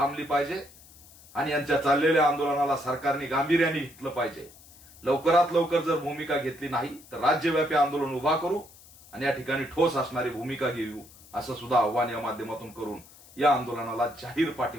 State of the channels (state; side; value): noise; left; hiss, 23 dB below the sound